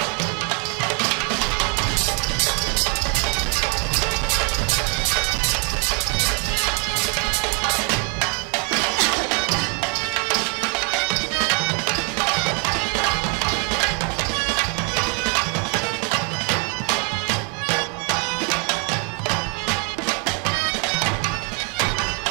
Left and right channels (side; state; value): left; quieter; 37.5 dB